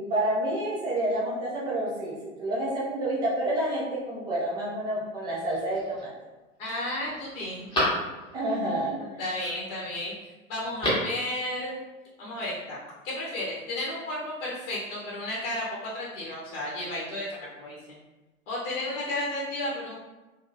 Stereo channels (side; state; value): both; normal; correlation 0.19